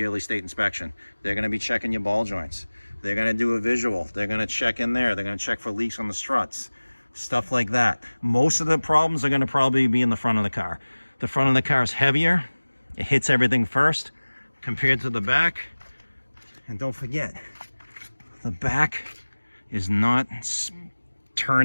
state inspection. They're going to be checking your ball joints. They're going to do a visual. They're going to check in there. They're going to check for leaks on the struts, stuff like that. Most of the problems are going to probably be in the front of the car. The front of the car is heavier. It hits everything first compared to the back. And don't forget, the back is not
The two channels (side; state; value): both; inverted; correlation -1.00